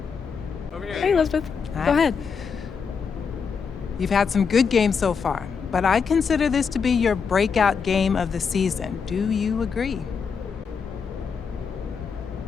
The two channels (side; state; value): right; quieter; 6.0 dB